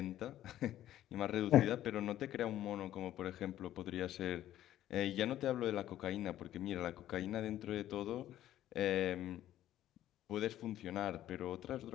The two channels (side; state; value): right; quieter; 12.8 dB